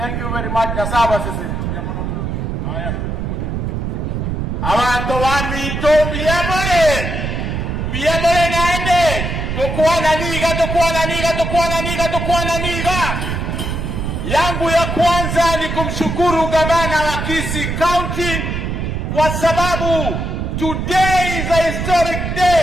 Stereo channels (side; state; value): right; noise; rumble, 2 dB below the sound